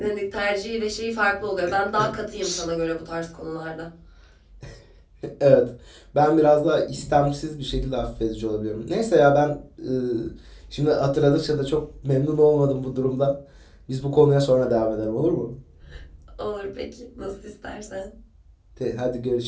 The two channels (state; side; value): identical; both; correlation 1.00